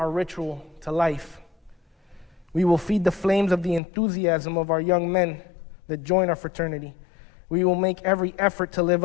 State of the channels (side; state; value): right; drops out; at 3.8 s